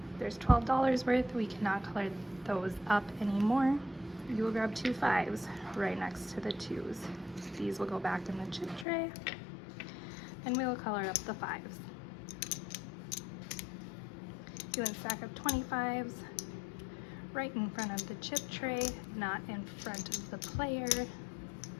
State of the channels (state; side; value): drops out; right; at 8.8 s